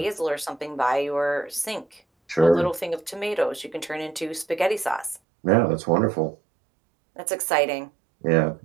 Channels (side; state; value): left; drops out; at 5.2 s